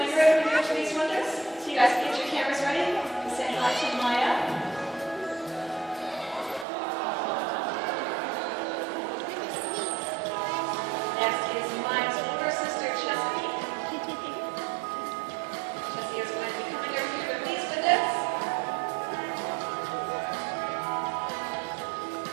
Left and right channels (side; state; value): left; drops out; at 6.7 s